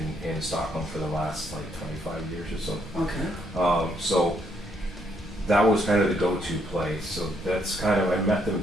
in Stockholm for the last like 25 years or so. Okay. So that was kind of the go-to place. So that's kind of, I met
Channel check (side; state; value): both; normal; correlation 0.72